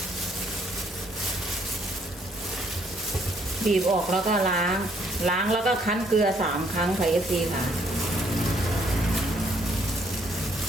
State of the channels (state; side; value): normal; both; correlation 0.67